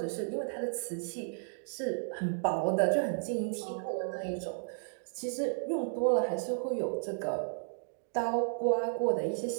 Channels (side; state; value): left; silent; digital silence